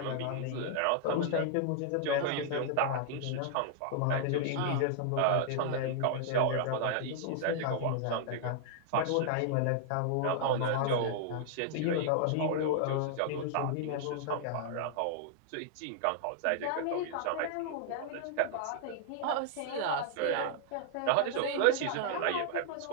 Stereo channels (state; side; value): different; both; correlation -0.01